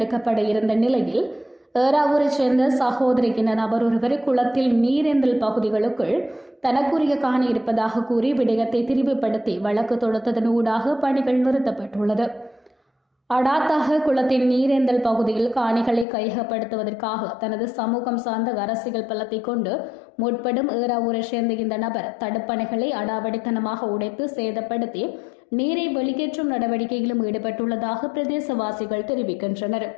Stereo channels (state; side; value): drops out; right; at 16.1 s